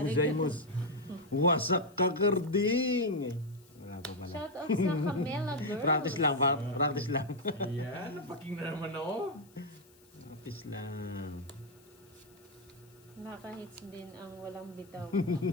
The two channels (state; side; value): noise; left; hiss, 28 dB below the sound